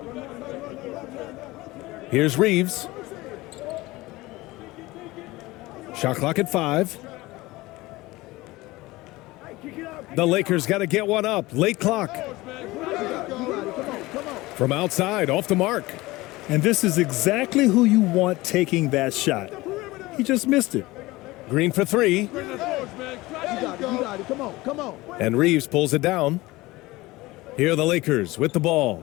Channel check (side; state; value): right; quieter; 20.0 dB